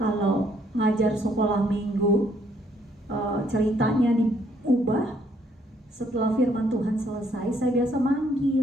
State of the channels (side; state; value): both; normal; correlation 0.68